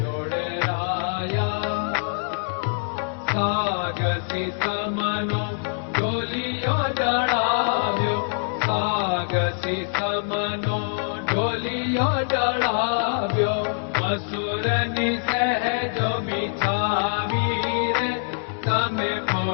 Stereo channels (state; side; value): silent; right; digital silence